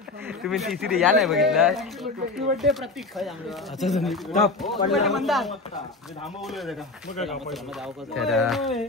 तुम्ही तिसरी या नाही बघितला.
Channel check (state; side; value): quieter; right; 3.5 dB